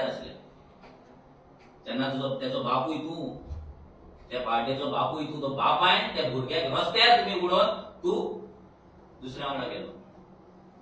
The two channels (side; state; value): both; identical; correlation 1.00